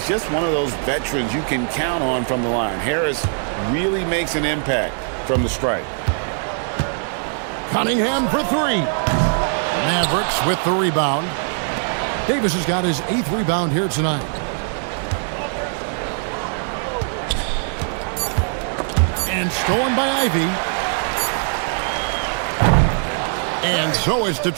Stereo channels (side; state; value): left; silent; 60 dB below the other